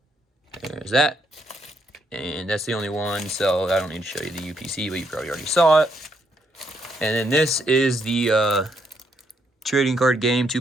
There's that. And that's the only one, so I don't need to show you the UPC, but you probably already saw it. And then this is the trading card game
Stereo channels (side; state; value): both; normal; correlation 0.75